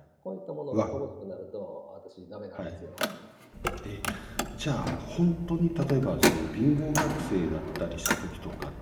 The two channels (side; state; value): both; identical; correlation 1.00